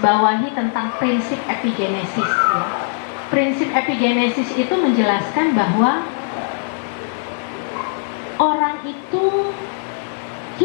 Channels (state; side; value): silent; right; 62 dB below the other